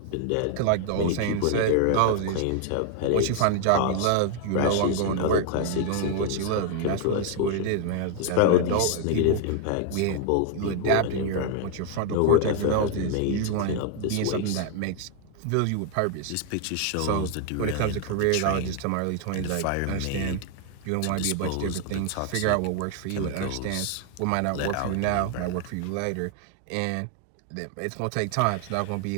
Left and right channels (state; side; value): different; both; correlation 0.00